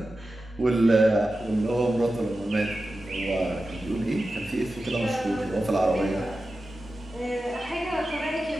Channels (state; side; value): normal; both; correlation 0.93